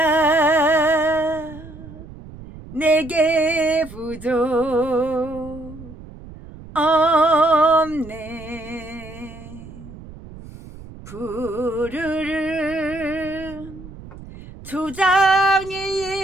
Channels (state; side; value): noise; right; rumble, 16 dB below the sound